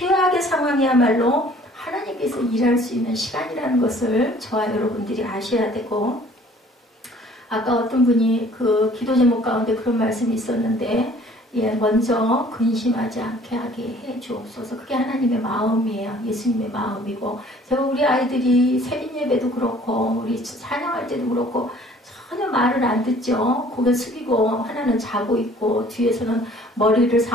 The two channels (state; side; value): normal; both; correlation 0.54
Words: 상황이야말로 하나님께서 일할 수 있는 시간이라는 것을 저와 여러분들이 아셔야 되고, 아까 어떤 분이 그 기도 제목 가운데 그런 말씀이 있었는데, 먼저 근심하지 않게 하게 해 주옵소서. 그게 하나님의 마음이에요. 예수님의 마음이고, 제가 우리 아이들이 새벽 예배도 그렇고 우리 찬양할 때도 그렇고 전혀 말을 안 듣죠. 고개 숙이고 하나는 자고 있고 뒤에서는 머리를